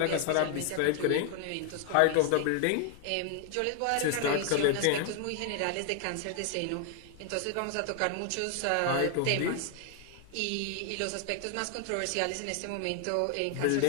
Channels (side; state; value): both; different; correlation 0.00